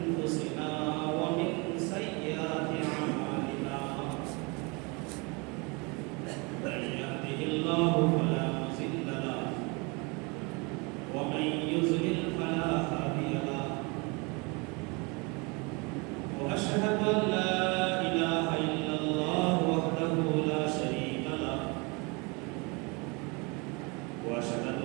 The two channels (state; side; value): quieter; left; 29.2 dB